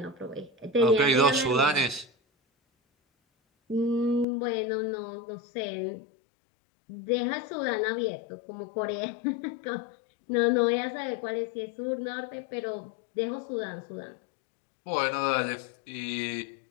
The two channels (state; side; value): drops out; right; at 4.2 s